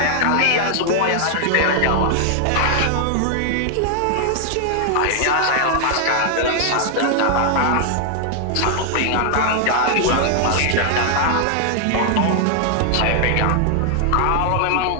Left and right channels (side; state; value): both; different; correlation 0.00